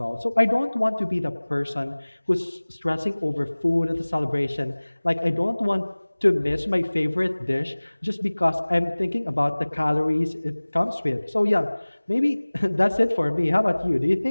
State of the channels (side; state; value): both; inverted; correlation -1.00